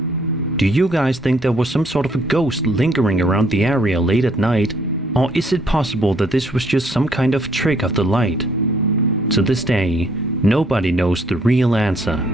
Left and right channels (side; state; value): both; normal; correlation 0.65